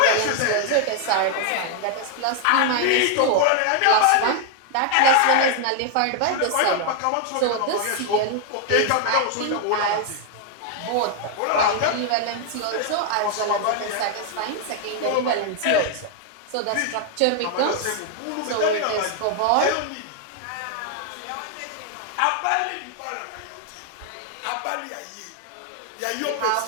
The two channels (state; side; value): different; both; correlation 0.00